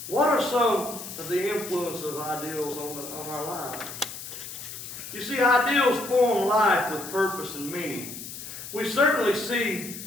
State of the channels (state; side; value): noise; left; hiss, 10 dB below the sound